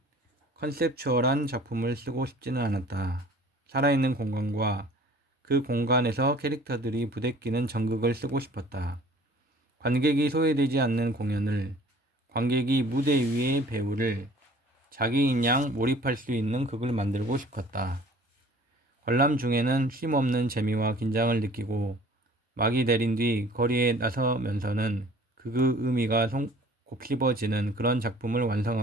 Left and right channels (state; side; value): normal; both; correlation 0.50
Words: 컨셉추얼한 작품을 쓰고 싶지는 않았다. 살아있는 공간과 그 공간에서 캐릭터들이 부대끼는 전극을 쓰고 싶었다. 관객이 소외되지 않는 공연을, 관객이 무대 위의 배우를 자기인 양 몰입할 수 있는 극을 만들고 싶었다. 관람 중에는 쉼없는 재미와 긴장을 느끼고 막이 내린 뒤 거리에 나서면서는 그 의미가 곱씹어지는 그런 작품을